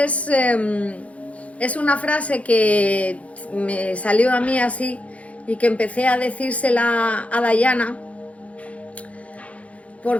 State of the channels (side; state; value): right; late; 0.065 ms